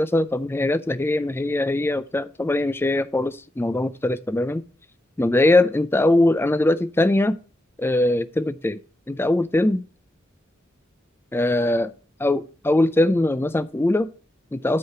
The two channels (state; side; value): normal; both; correlation 0.86